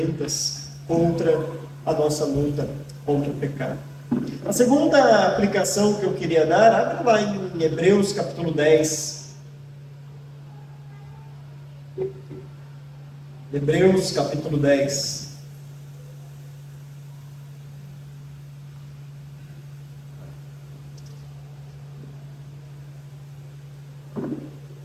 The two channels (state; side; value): identical; both; correlation 1.00